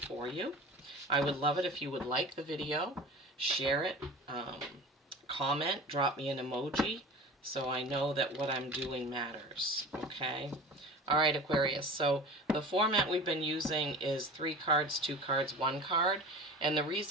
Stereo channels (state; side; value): normal; both; correlation 0.37